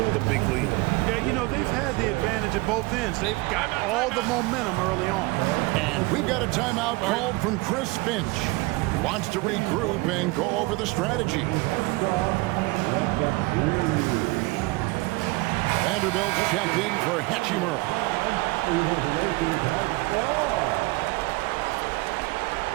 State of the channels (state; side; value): quieter; left; 23.2 dB